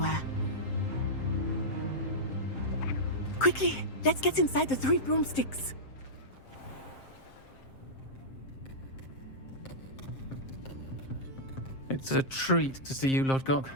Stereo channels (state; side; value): late; right; 7.5 ms